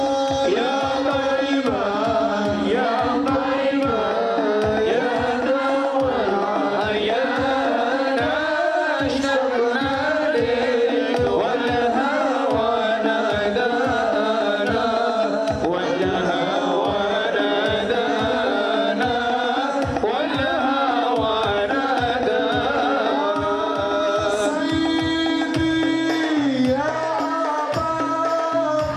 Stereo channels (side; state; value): both; identical; correlation 1.00